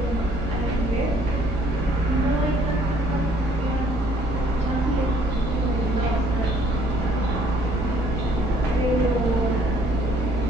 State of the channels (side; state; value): both; normal; correlation 0.62